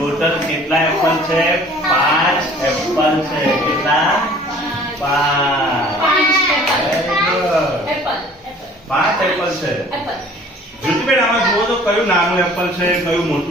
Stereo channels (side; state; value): both; normal; correlation 0.51